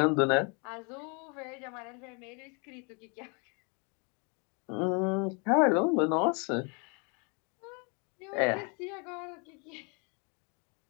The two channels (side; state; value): right; quieter; 34.1 dB